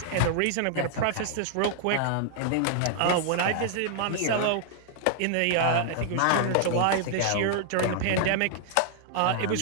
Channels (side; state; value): both; different; correlation 0.00